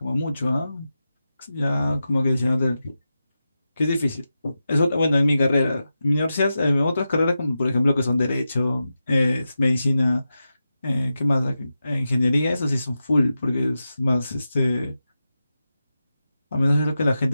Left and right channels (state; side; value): inverted; both; correlation -0.91